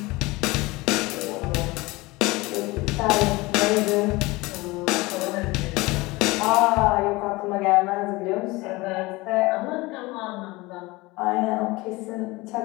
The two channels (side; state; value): right; quieter; 22.2 dB